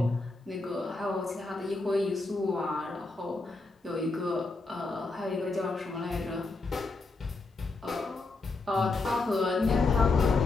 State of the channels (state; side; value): quieter; right; 3.5 dB